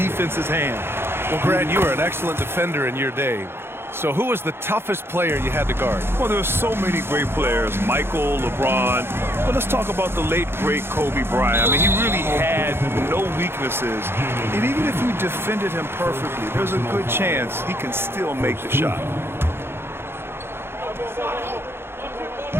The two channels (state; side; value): late; left; 0.11 ms